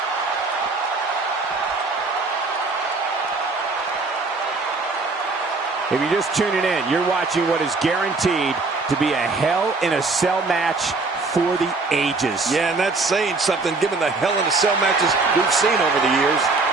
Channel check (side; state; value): left; quieter; 3.8 dB